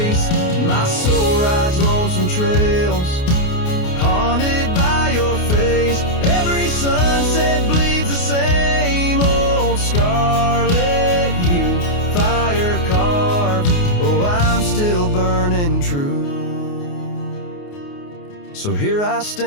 my soul rides lonesome trails, haunted by your face. Every sunset bleeds the same old scarlet hue, fire carved. Oh, I'm still burning true. So here I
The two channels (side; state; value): right; late; 28 ms